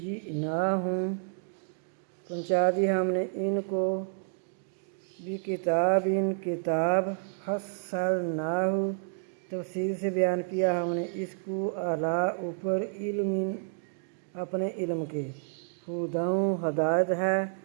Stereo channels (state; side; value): silent; left; digital silence